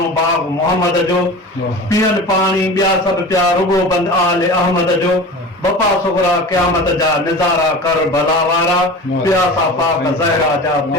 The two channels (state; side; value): normal; both; correlation 0.35